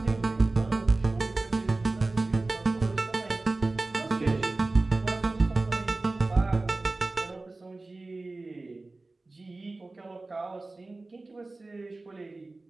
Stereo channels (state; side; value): quieter; left; 3.2 dB